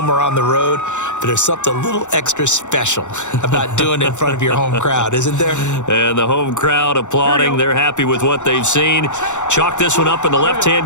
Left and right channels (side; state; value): right; late; 0.84 ms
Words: or on the road, but there's something a little extra special about doing it in front of your home crowd, isn't there? And the home crowd applauding. They're happy with what they've seen. Chalk this one up in the